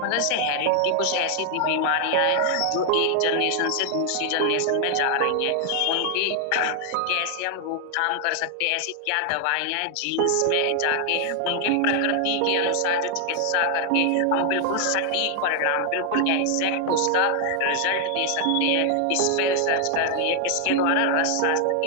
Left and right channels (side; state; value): both; different; correlation 0.00